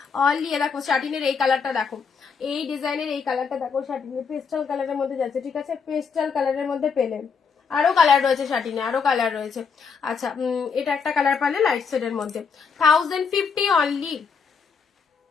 অনলি। দেখো শার্টিনের এই কালারটা দেখো, এই ডিজাইনের এই কালারটা দেখো, শার্টিনের পেস্টাল কালারের মধ্যে যাচ্ছে, ঠিক আছে, পেস্টাল কালারের মধ্যে পেলে। আরো কালার রয়েছে শার্টিনে, আরো কালার রয়েছে। আচ্ছা, এটা একটা কালার পালে লাইট শেডের মধ্যে, 1050 অনলি।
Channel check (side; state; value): right; quieter; 5.7 dB